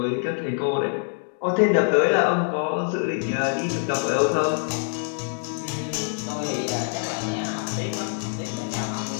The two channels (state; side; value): silent; right; digital silence